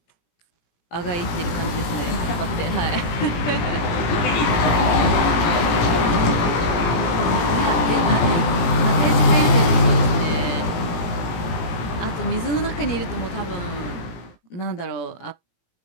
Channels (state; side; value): late; right; 17 ms